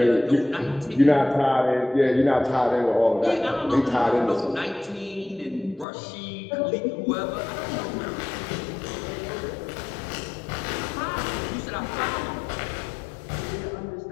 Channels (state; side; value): drops out; right; at 5.9 s